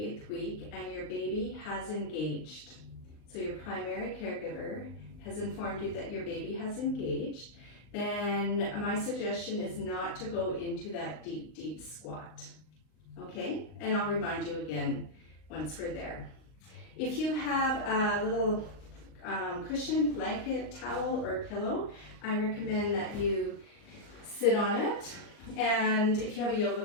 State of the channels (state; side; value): late; right; 39 ms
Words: week and your baby has engaged, so your primary caregiver has informed you that your baby has engaged, then my suggestion is not to go into that deep squat, okay? And I'll remind you again once we're there. If you have a little cushion, blanket, towel, or pillow, I recommend that you sit on it. And if you have a yoga